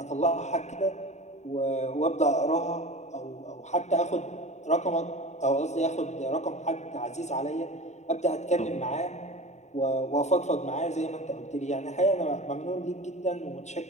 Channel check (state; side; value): late; right; 0.33 ms